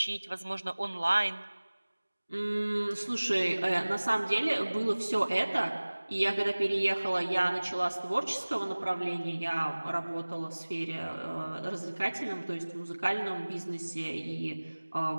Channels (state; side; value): inverted; both; correlation -1.00